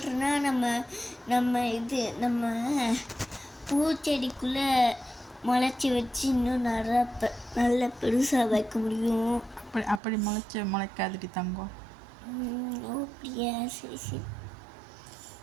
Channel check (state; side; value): drops out; left; at 10.0 s